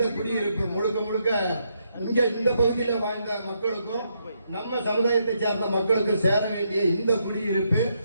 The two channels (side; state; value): both; inverted; correlation -0.78